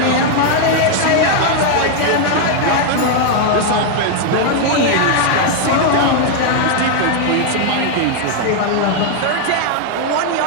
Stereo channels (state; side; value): different; both; correlation 0.00